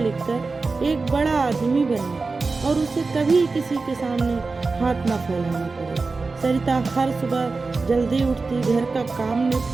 कर एक बड़ा आदमी बने और उसे कभी किसी के सामने हाथ न फैलाना पड़े। सरिता हर सुबह जल्दी उठती, घर का काम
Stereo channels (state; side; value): quieter; left; 4.0 dB